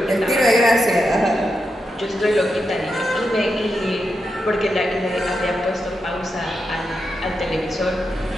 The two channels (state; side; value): normal; both; correlation 0.86